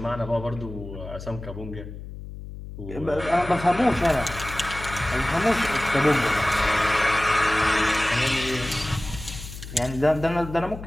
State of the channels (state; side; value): noise; left; hum, 11 dB below the sound